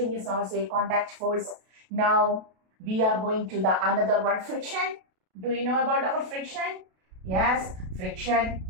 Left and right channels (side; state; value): left; late; 32 ms